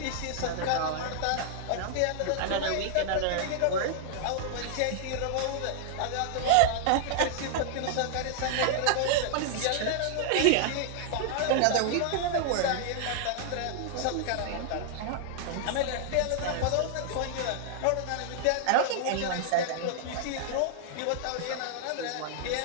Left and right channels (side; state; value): both; different; correlation -0.01